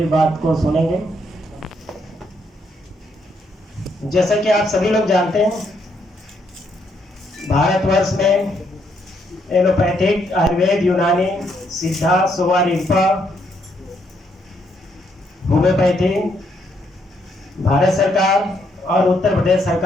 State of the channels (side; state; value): both; normal; correlation 0.74